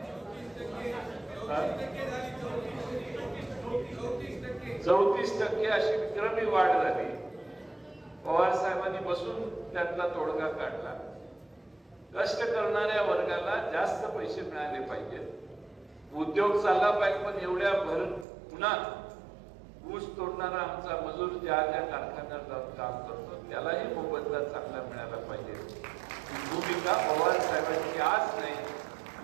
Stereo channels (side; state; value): left; drops out; at 18.2 s